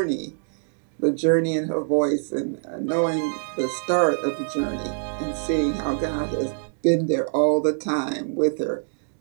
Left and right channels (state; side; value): silent; left; digital silence